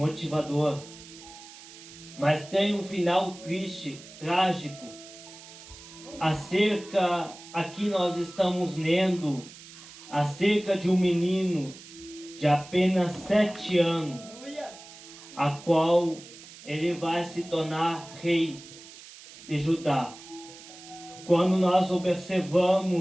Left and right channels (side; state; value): right; noise; hiss, 18 dB below the sound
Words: mas tem um final triste, trágico. Aqui nós estamos lendo acerca de um menino de apenas 7 anos, a qual ele vai se tornar rei de Judá. Quando nós